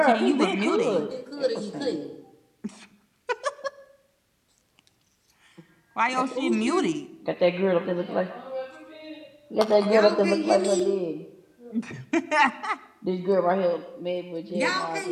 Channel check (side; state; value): both; identical; correlation 1.00